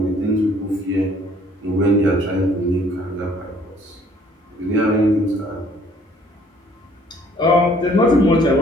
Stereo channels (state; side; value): normal; both; correlation 0.59